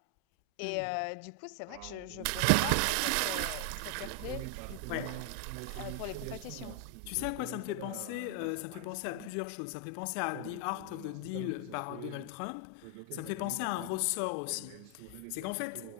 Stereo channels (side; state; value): both; different; correlation 0.00